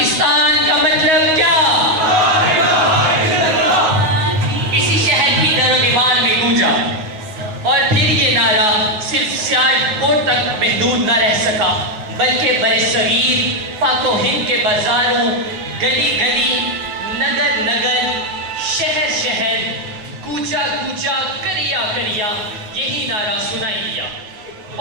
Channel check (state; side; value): late; left; 9.4 ms